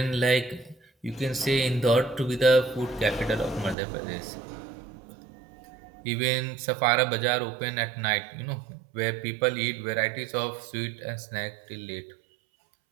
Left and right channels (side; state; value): left; drops out; at 3.8 s